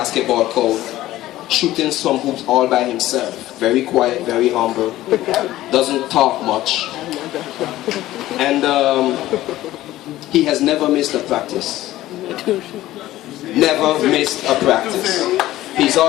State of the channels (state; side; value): quieter; right; 15.4 dB